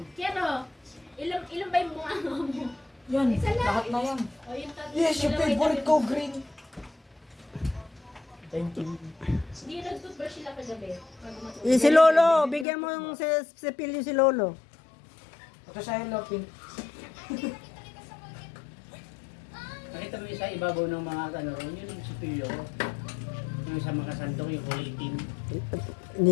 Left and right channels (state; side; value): drops out; right; at 12.7 s